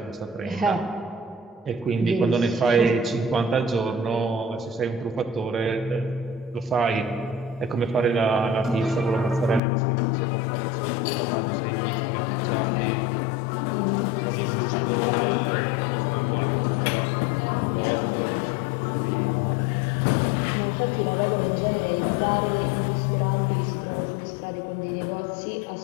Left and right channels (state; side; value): drops out; right; at 9.6 s